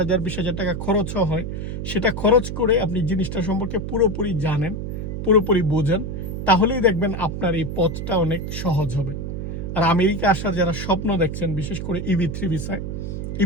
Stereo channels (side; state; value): right; noise; hum, 5 dB below the sound